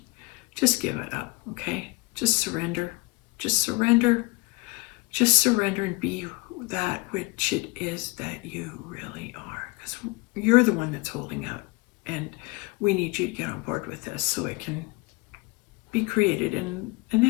give it up. Okay, just surrender. Just surrender. Just surrender and be that which it is that you really are, because you're the one that's holding out, and we need you to get on board with this so it can be created in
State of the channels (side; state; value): right; quieter; 24.7 dB